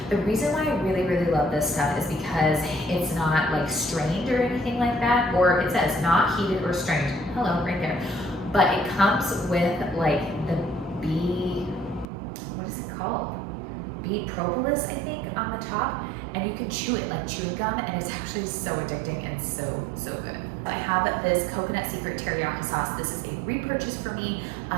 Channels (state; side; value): drops out; left; at 12.1 s